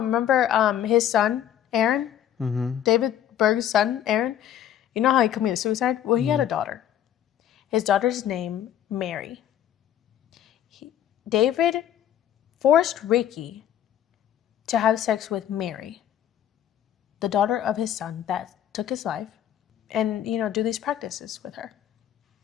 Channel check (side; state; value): right; quieter; 10.6 dB